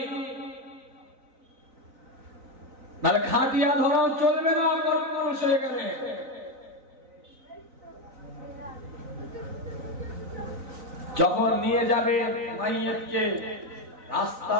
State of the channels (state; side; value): late; left; 3.9 ms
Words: তাহলে খাটিয়া ধরাও চলবে না পুরুষ হয়ে গেলে। যখন নিয়ে যাবে মাইয়াতকে,